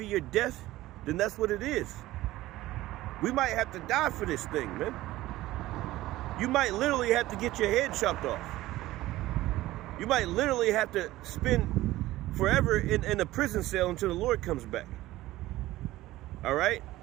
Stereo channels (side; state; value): left; quieter; 16.6 dB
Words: your death, then that's what it is. We might have to die for this thing, man. You might literally have to get your head chopped off. You might literally have to spend forever in a prison cell until the Lord comes back. All right?